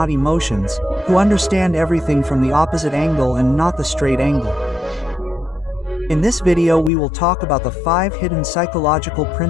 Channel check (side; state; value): right; drops out; at 6.9 s